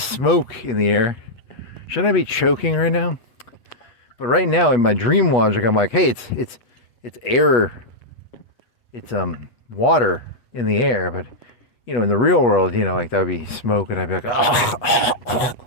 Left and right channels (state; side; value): late; right; 8.3 ms